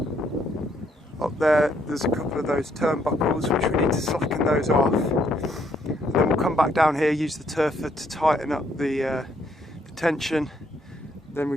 up there's a couple of those turnbuckles which we need to slacken those off, and then we'll come back down here, use the turfer to tighten up the tension, then we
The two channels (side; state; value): both; normal; correlation 0.70